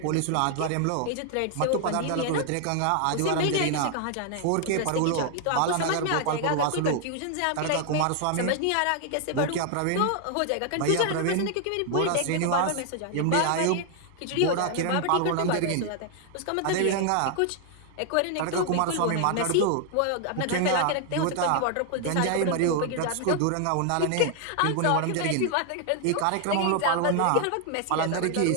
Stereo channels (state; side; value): different; both; correlation 0.00